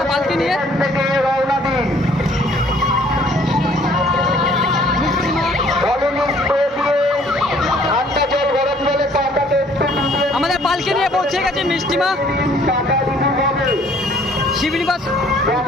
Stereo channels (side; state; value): both; normal; correlation 0.59